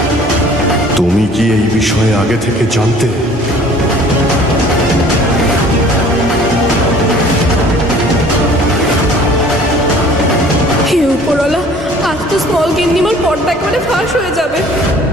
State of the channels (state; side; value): normal; both; correlation 0.51